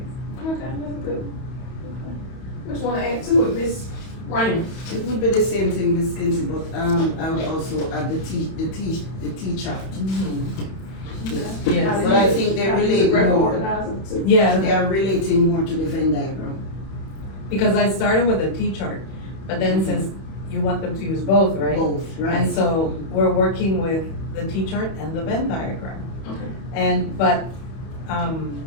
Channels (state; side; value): late; right; 31 ms